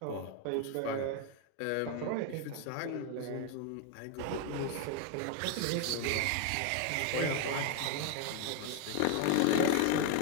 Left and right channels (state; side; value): different; both; correlation 0.01